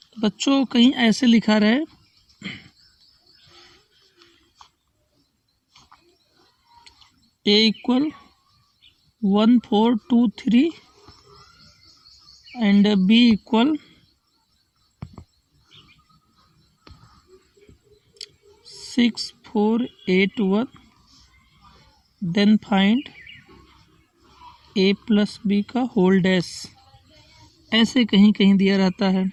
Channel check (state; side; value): identical; both; correlation 1.00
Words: बच्चों कहीं ऐसे लिखा रहे A equal 1 4 2 3 and B equal 6 4 8 1, then find A plus B का होल डैश, ऐसे कहीं कहीं दिया रहता है,